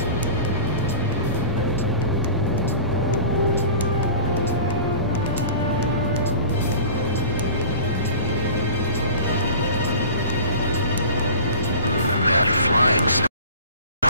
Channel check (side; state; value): both; inverted; correlation -0.32